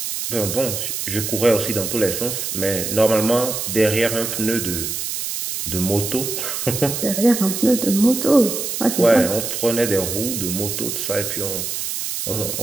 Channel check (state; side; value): noise; right; hiss, 4 dB below the sound